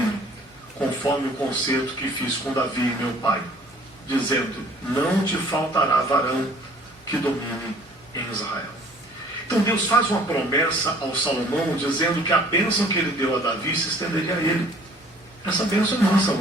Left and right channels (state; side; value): normal; both; correlation 0.54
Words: conforme o concerto que fiz com Davi meu pai, dizendo, não te faltará varão que domine em Israel. Então Deus faz uma promessa ao Salomão, dizendo que a bênção que ele deu a Davi se estenderia a ele. Essa bênção é nossa